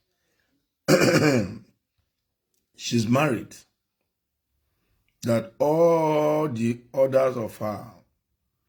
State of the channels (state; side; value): identical; both; correlation 1.00